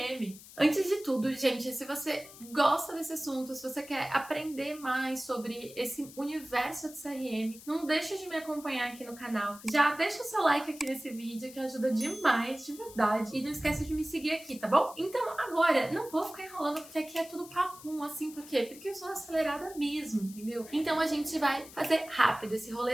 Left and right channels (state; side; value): noise; left; hiss, 18 dB below the sound